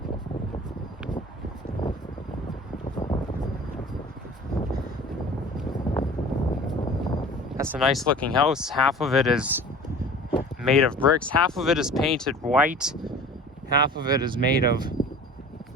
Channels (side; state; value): both; normal; correlation 0.42